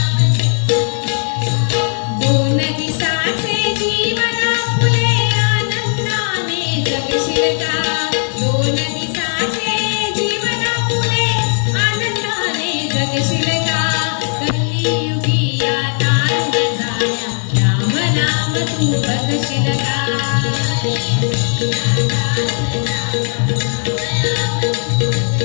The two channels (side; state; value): right; silent; digital silence